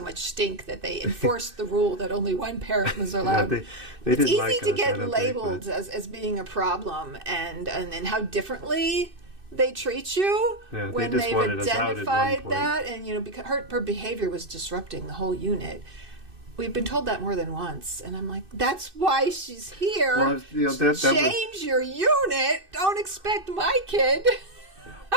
much stink that they enforced the rule that only one parent was allowed. They it's didn't easy like to us, get labeled as being a problem, and how differently they treat you when they just they've wanted us out at one identified point. that, and because her behavior was disrupting the whole unit. we've been told that more than once. And I'm like, that's why she's here. Well, you know, that Change your unit. Don't expect my kid.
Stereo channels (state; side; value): late; left; 2.6 ms